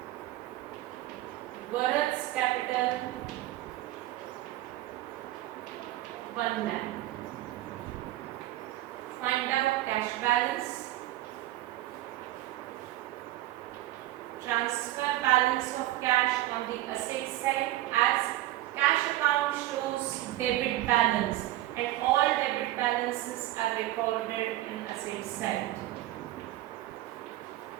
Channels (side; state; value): left; quieter; 15.6 dB